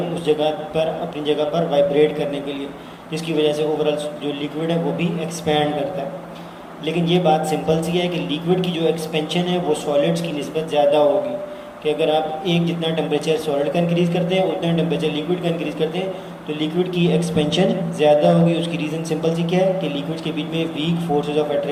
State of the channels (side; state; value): both; identical; correlation 1.00